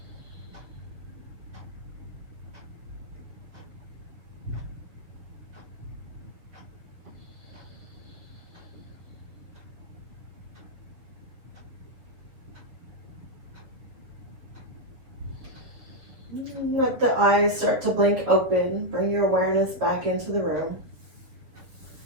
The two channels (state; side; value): late; left; 7.0 ms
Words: Let the eyes start to blink open. Bring your awareness back into the room.